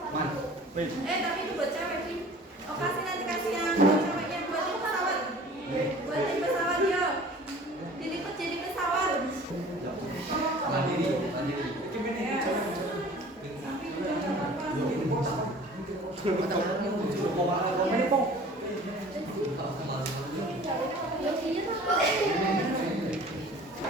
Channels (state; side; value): normal; both; correlation 0.46